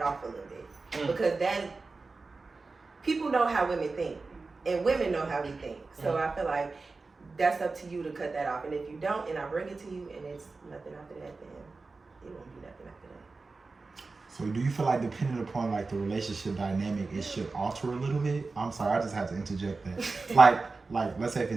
off a little bit because then people know how women think and women know how we think. So I feel like that's up to you to cut that off. And if you don't, and I bring it to you, and it's nothing after that, then it won't be nothing after that. So do you feel like depending upon like the relationship dynamic, it should alter a little bit? I'm sorry, I just had to interject that. like let's say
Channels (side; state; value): left; quieter; 3.9 dB